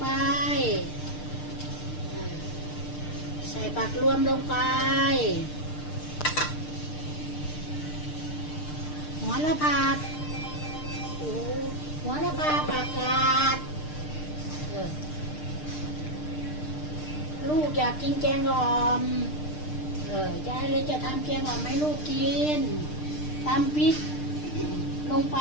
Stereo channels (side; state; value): right; late; 6.6 ms